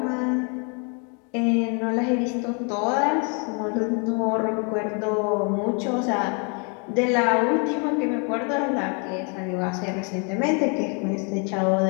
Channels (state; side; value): quieter; right; 36.8 dB